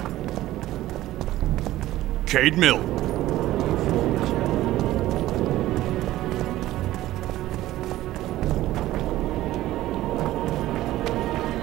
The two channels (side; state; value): left; quieter; 15.4 dB